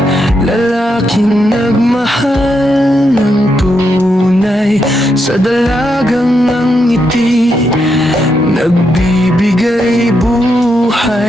lalaking nagmahal ng tunay sa dalagang ng ngiti, nagbibigay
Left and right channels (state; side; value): normal; both; correlation 0.81